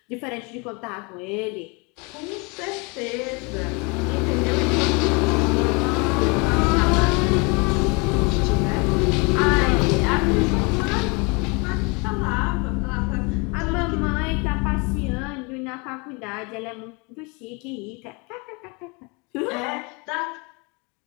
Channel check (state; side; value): quieter; right; 30.1 dB